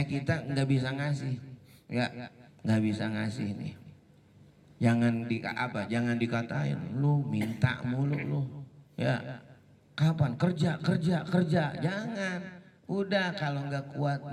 nggak bisa ngasih, ya nggak bisa ngasih nih. Jangan dikatain lu minta mulu lu. Ya, kapan kerja, jangan. Udah, kalau nggak kuat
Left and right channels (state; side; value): identical; both; correlation 1.00